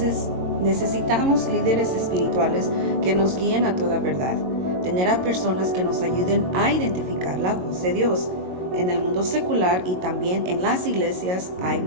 necesitamos líderes espirituales que nos guíen a toda verdad, tener a personas que nos ayuden a identificar la voz de Dios. En el mundo secular y también en las iglesias hay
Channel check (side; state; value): left; late; 22 ms